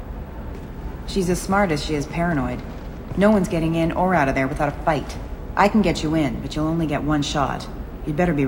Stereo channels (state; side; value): identical; both; correlation 1.00